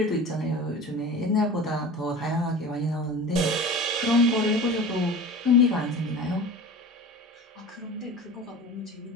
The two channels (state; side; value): normal; both; correlation 0.36